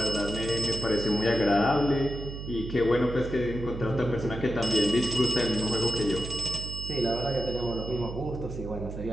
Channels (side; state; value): right; noise; hum, 8 dB below the sound